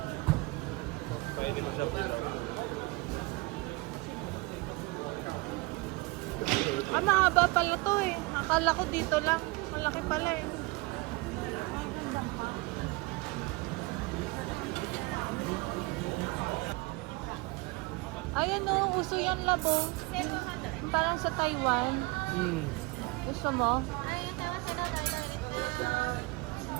kaya hindi mo siya pila. Mahaba pala to eh. Akala ko dito lang. Malaki pala eh. Ayan o, uso yan labo. Parang sa Taiwan. Gusto mo?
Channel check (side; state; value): left; quieter; 24.5 dB